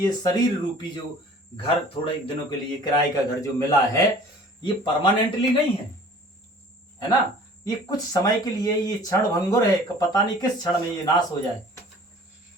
शरीर रूपी जो घर थोड़े दिनों के लिए किराए का घर जो मिला है, ये परमानेंटली नहीं है ना। ये कुछ समय के लिए, ये क्षण भंगुर है, पता नहीं किस क्षण में ये नाश हो जाए।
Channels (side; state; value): both; normal; correlation 0.48